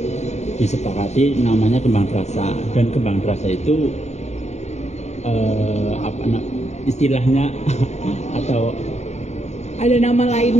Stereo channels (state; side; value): late; right; 0.32 ms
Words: disepakati namanya Kembang Terasa, dan Kembang Terasa itu istilahnya atau ada nama